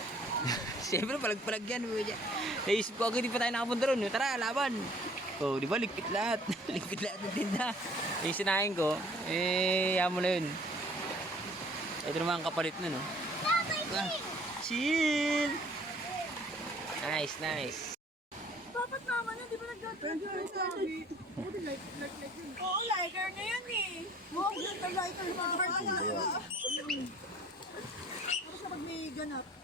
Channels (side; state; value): both; normal; correlation 0.55